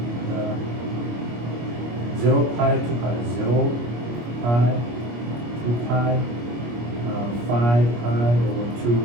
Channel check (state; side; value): late; left; 25 ms